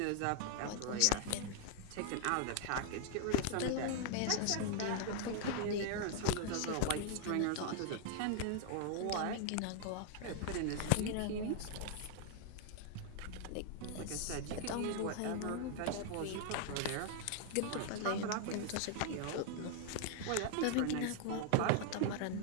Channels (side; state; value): both; different; correlation 0.00